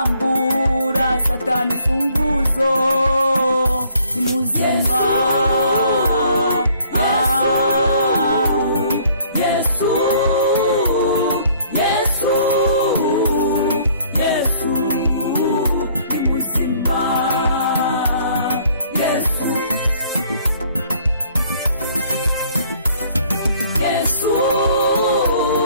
satani funguzo ni muzima Yesu Yesu Yesu ni muzima Yesu Yesu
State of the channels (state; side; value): inverted; both; correlation -0.60